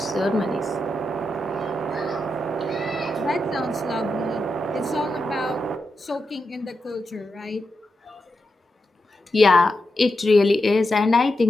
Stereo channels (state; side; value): normal; both; correlation 0.87